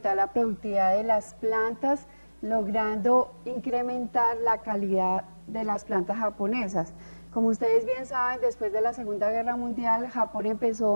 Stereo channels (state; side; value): inverted; both; correlation -1.00